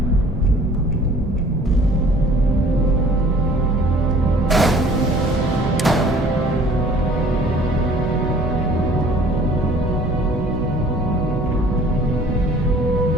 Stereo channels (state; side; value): normal; both; correlation 0.52